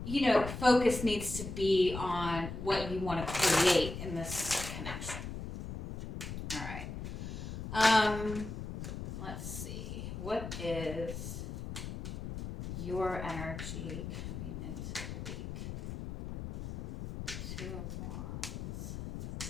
focus needs to be on what you want to create in this connection. All right. Let's see. What is your energy coming into the week? Two of Wands.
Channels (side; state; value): left; noise; rumble, 7 dB below the sound